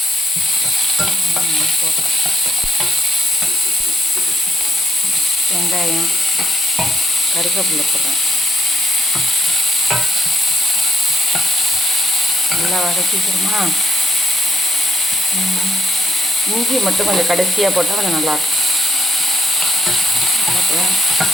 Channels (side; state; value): both; normal; correlation 0.75